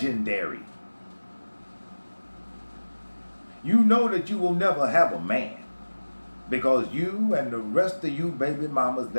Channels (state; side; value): inverted; both; correlation -1.00